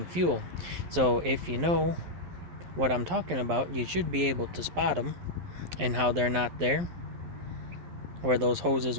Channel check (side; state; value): left; late; 11 ms